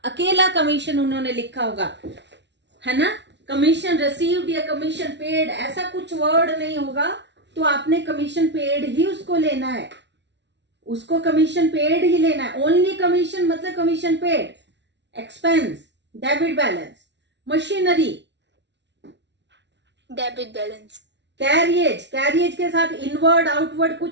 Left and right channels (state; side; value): late; left; 0.51 ms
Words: अकेला कमीशन उन्होंने लिखा होगा, है ना, कमीशन रिसीव्ड या कमीशन पेड, ऐसा कुछ वर्ड नहीं होगा, तो आपने कमीशन पेड ही उसको लेना है, उसको कमीशन पेड ही लेना है। ओनली कमीशन मतलब commission paid. Expense, debit balance. Machinery, Debit balance. Carriage, carriage के साथ इनवर्ड आउटवर्ड